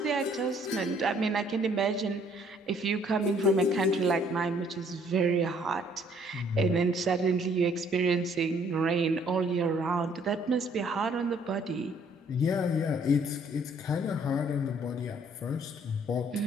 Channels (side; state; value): both; normal; correlation 0.62